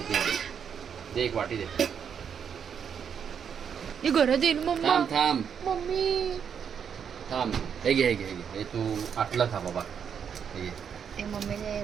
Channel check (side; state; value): left; quieter; 7.6 dB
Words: आहे. दे एक वाटी दे. हे घरात येईल मम्मा. थांब थांब मम्मी थांब. हे घे हे घे हे घे. हे तू आटलं खा बाबा. हे घे. ते मम्मीने